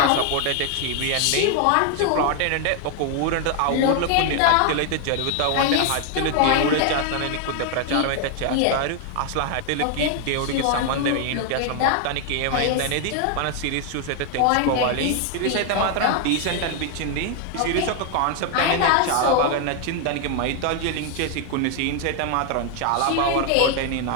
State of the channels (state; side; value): different; both; correlation 0.00